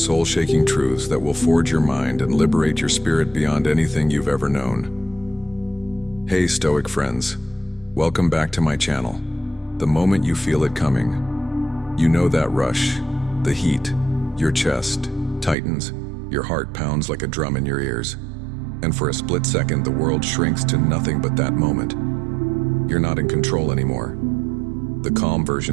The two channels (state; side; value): drops out; left; at 15.6 s